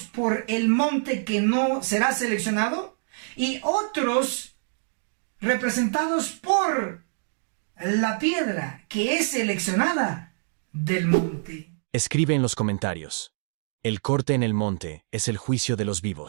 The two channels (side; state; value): left; silent; digital silence